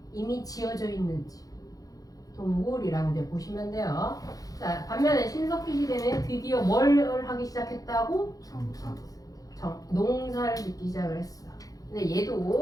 이미 지어져 있는 집. 동굴이라고 이제 보시면 돼요. 자, 반면에 신석기 시대는 드디어 뭘 하기 시작했다고? 농사를 짓기 시작을 했어. 근데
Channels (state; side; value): late; right; 0.17 ms